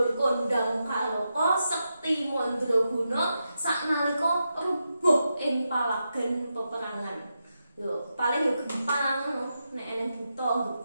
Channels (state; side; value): inverted; both; correlation -0.87